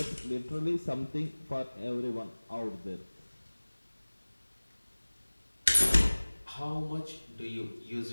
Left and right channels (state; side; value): inverted; both; correlation -1.00